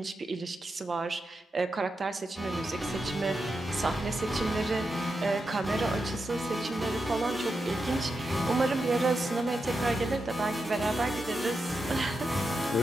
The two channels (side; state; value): both; normal; correlation 0.87